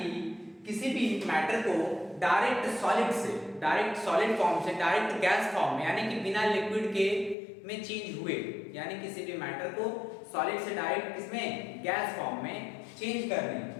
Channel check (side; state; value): right; drops out; at 7.4 s